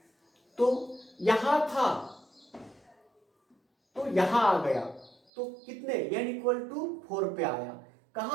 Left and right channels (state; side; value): drops out; left; at 5.2 s